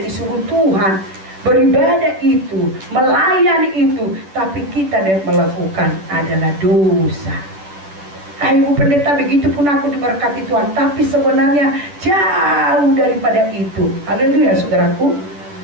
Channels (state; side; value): late; left; 10 ms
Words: disuruh Tuhan, beribadah itu, melayani itu, tapi kita dan melakukan adalah dosa. Ibu pendeta, begitu pun aku diberkati Tuhan, tapi sebenarnya jauh daripada itu. Haleluya, saudaraku.